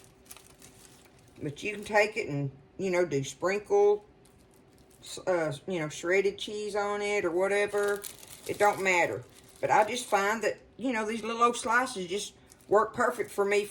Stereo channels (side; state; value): both; identical; correlation 1.00